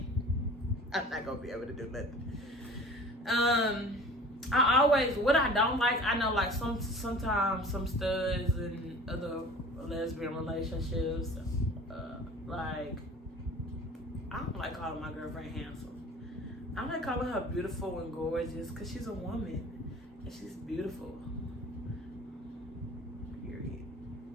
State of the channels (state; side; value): normal; both; correlation 0.43